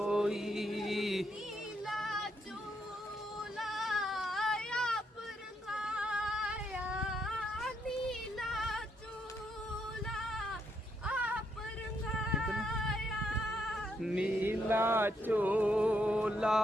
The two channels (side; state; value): both; normal; correlation 0.77